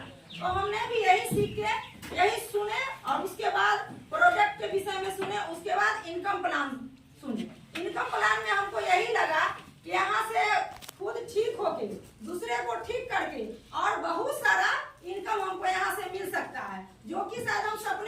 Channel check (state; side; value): identical; both; correlation 1.00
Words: तो हमने भी यही सीख के यही सुने और उसके बाद प्रोडक्ट के विषय में सुने, उसके बाद इनकम प्लान सुने। इनकम प्लान में हमको यही लगा कि यहाँ से खुद ठीक होके दूसरे को ठीक करके और बहुत सारा इनकम हमको यहाँ से मिल सकता है, जो कि शायद हम